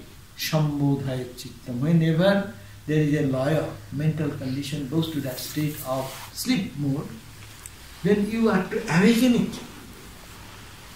sambodhaya chittam. Whenever there is a loya, mental condition goes to that state of sleep mode, then you have to awaken it.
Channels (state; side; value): identical; both; correlation 1.00